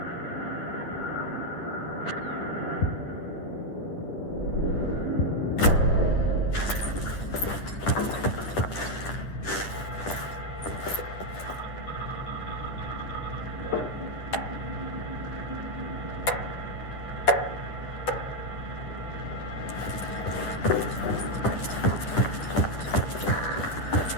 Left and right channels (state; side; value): late; right; 10 ms